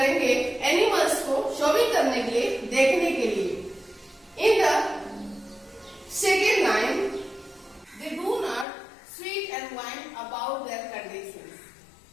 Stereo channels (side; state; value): right; drops out; at 8.7 s